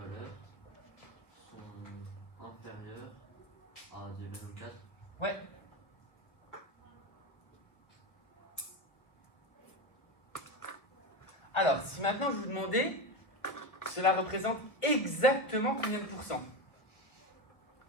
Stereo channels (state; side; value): late; right; 1.1 ms